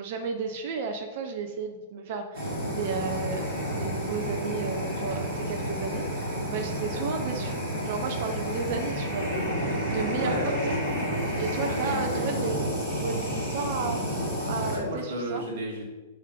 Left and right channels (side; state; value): both; inverted; correlation -0.34